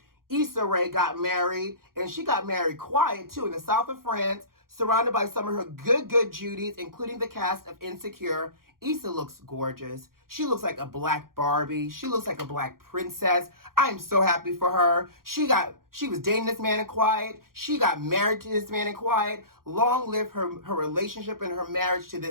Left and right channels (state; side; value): late; left; 0.92 ms